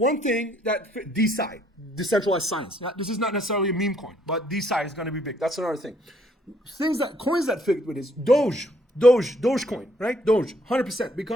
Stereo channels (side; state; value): both; normal; correlation 0.66